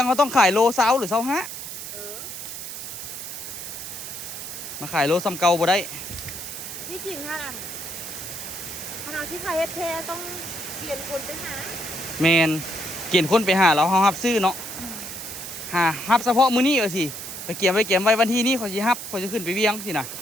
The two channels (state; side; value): noise; right; hiss, 9 dB below the sound